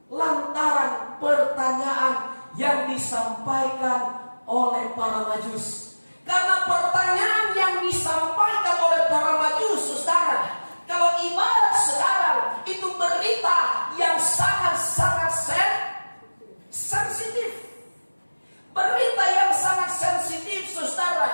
lantaran pertanyaan yang disampaikan oleh para Majus. Karena pertanyaan yang disampaikan oleh para Majus, saudara, kalau ibarat sekarang itu berita yang sangat-sangat sensitif. Berita yang sangat sensitif,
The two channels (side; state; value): both; inverted; correlation -1.00